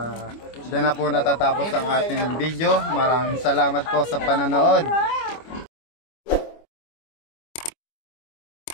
dyan na po natatapos ang ating video. Maraming salamat po sa panonood.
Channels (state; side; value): late; right; 25 ms